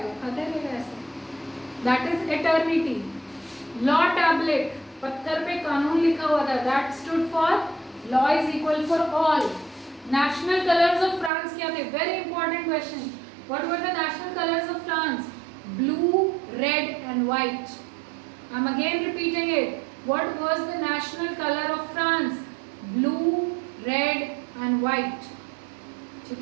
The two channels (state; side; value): drops out; left; at 11.3 s